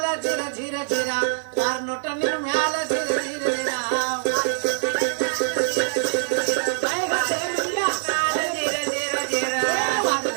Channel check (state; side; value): silent; left; digital silence